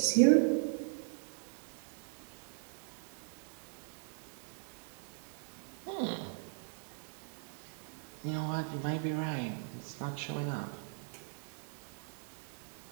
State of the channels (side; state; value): left; silent; 52 dB below the other